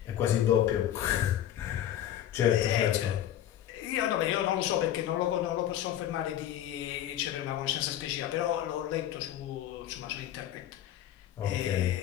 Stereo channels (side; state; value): right; quieter; 11.6 dB